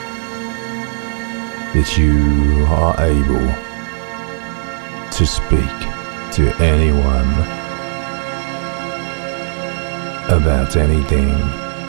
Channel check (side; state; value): left; silent; digital silence